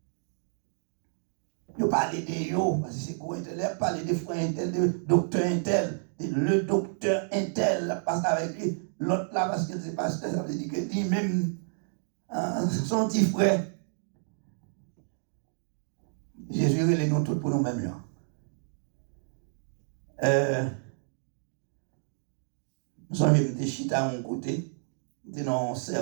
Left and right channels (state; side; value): silent; left; digital silence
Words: Ils parlent de eux, parce que c'est quoi intel, ils parlent des frères intel, de docteur intel, le docteur intel passe avec lui, l'autre là, parce que c'est pasteur, ça veut dire que lui-même, son petit frère. Jésus les nous tous pour nous-mêmes là. Nous avons des chita à mon côté, nous dans un